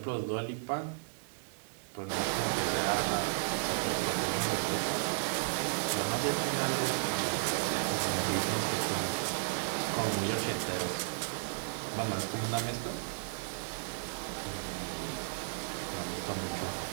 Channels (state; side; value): silent; left; digital silence